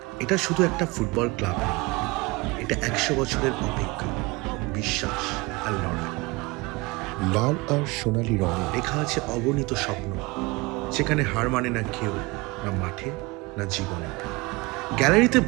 এটা শুধু একটা ফুটবল ক্লাব নয়, এটা 100 বছরের অপেক্ষা, বিশ্বাস আর লড়াই। লাল আর সোনালি রঙে লেখা আছে অগণিত স্বপ্ন, যেখানে হার মানে না কেউ, না মাঠে না জীবনে। গ্যালারিতে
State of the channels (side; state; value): left; quieter; 24.2 dB